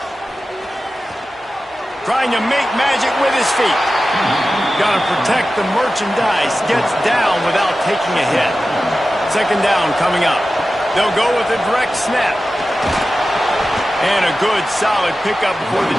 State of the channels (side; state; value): both; normal; correlation 0.94